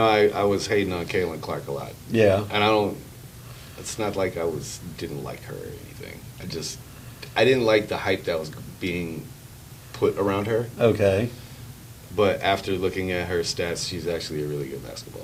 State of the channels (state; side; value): identical; both; correlation 1.00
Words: I was hating on Caitlin Clark a lot, Yeah. and I don't. It's not like I didn't like her or anything. I didn't like the hype that was being put around her. Okay. But after looking at her stats, she's actually a really good